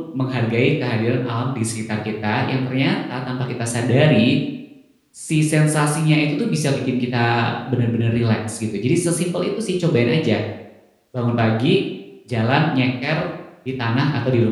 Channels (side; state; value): both; identical; correlation 1.00